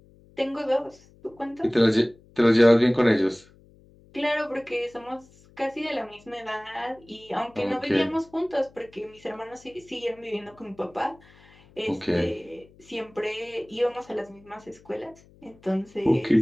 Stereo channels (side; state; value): left; noise; hum, 27 dB below the sound